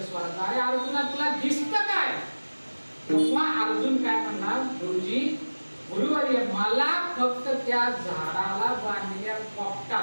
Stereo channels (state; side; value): inverted; both; correlation -1.00